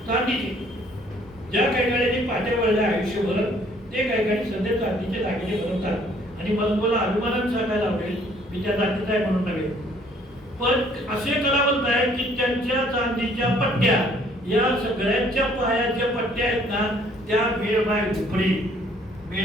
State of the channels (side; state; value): both; normal; correlation 0.61